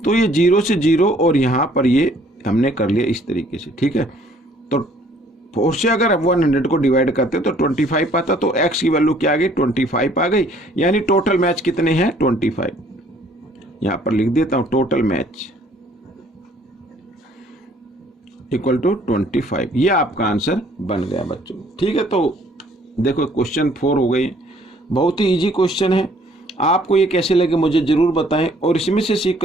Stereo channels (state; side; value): normal; both; correlation 0.60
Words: तो ये 0 से 0 और यहाँ पर ये हमने कर लिया इस तरीके से, ठीक है। तो 4 से अगर 100 को डिवाइड करते तो 25 पाता, तो x की वैल्यू क्या आ गई, 25 आ गई। यानी टोटल मैच कितने हैं, 25। यहाँ पर लिख देता हूँ टोटल मैच इक्वल टू 25, ये आपका आंसर बन गया बच्चों, ठीक है। तो देखो क्वेश्चन 4 हो गई, बहुत ही इजी क्वेश्चन है। आपको ये कैसे लगे मुझे ज़रूर बताएं और इसमें से